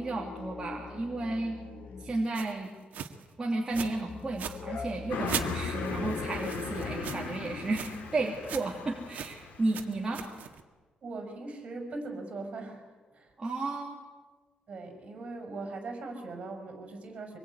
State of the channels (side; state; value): both; normal; correlation 0.80